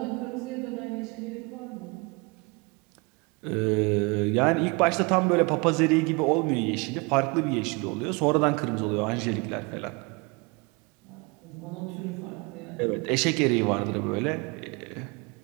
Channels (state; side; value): quieter; left; 28.5 dB